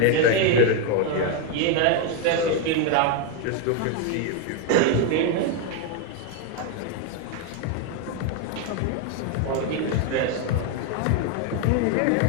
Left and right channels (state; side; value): different; both; correlation 0.02